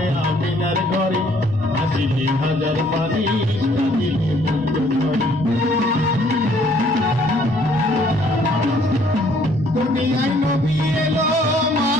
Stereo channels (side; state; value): both; normal; correlation 0.62